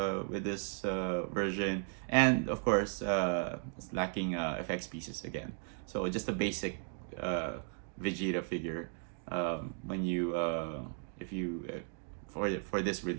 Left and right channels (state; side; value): silent; left; 54 dB below the other